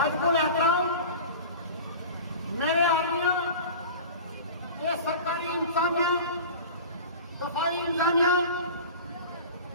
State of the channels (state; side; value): inverted; both; correlation -0.36